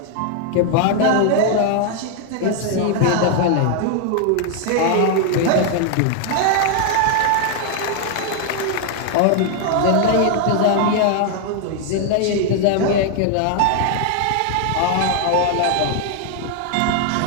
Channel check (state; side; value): different; both; correlation 0.00